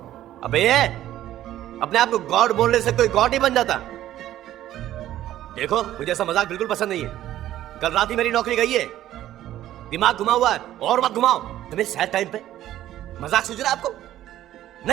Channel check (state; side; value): quieter; left; 13.1 dB